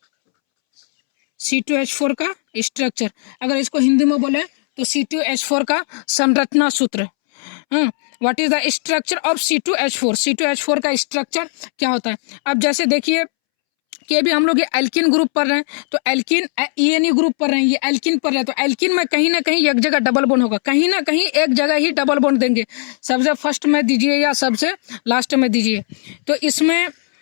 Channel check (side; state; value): right; silent; 67 dB below the other